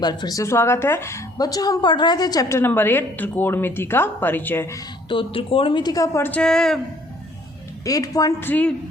बार फिर से स्वागत है। बच्चों, हम पढ़ रहे थे चैप्टर नंबर 8 त्रिकोणमिति का परिचय। तो त्रिकोणमिति का परिचय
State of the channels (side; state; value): both; normal; correlation 0.60